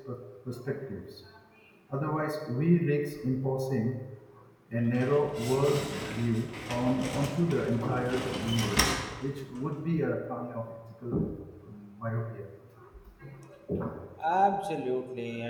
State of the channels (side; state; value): both; identical; correlation 1.00